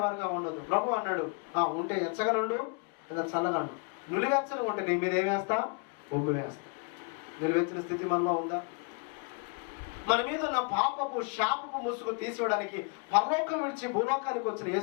ఉండొద్దు. ప్రభు అన్నాడు, ఉంటే ఎచ్చగా ఉండు, లేదా చల్లగా ఉండు. నిలువెచ్చగా ఉంటే నీ మీద ఏం వేస్తా? ఉమ్ము వేస్తా. నిలువెచ్చిన స్థితి మనలో ఉందా? మన మీద ఉన్న పాపపు శాపపు ముసుగు తీసివేయడానికి పరలోకం విడిచి భూలోకానికి వచ్చిన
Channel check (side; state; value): right; quieter; 35.1 dB